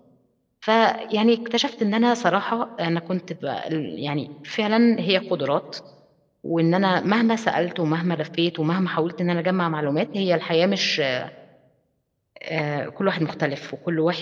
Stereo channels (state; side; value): identical; both; correlation 1.00